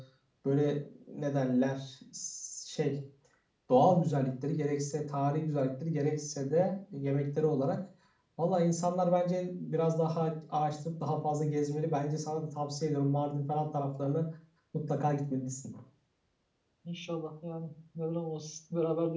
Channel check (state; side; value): identical; both; correlation 1.00